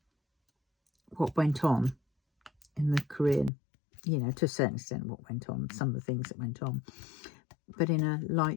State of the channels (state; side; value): drops out; right; at 3.5 s